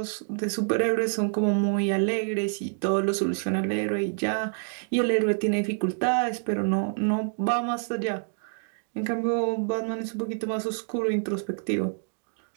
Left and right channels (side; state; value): left; silent; 60 dB below the other